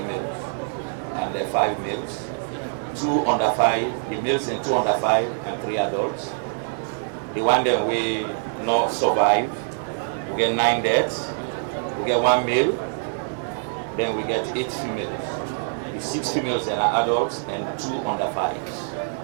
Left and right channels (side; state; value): left; silent; digital silence